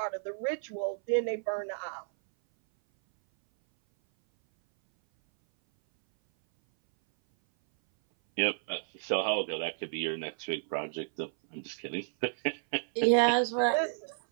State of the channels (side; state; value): left; silent; 57 dB below the other